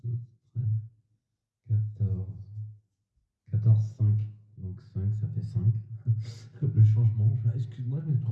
12, 13, 14. 14, 5. Donc 5, ça fait 5. Le changement. Excuse-moi, je me suis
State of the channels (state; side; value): identical; both; correlation 1.00